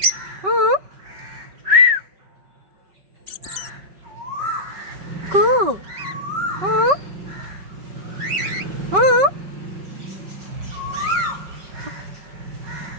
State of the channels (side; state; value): left; late; 5.3 ms